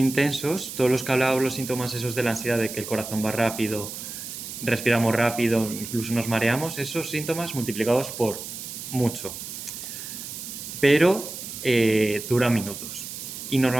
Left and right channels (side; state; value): right; noise; hiss, 9 dB below the sound